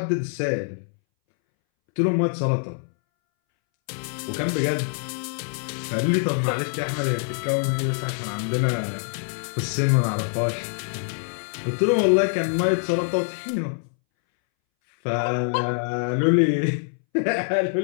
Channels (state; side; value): silent; right; 62 dB below the other